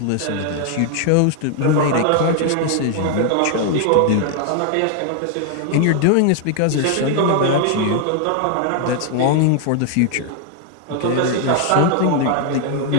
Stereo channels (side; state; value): both; different; correlation 0.00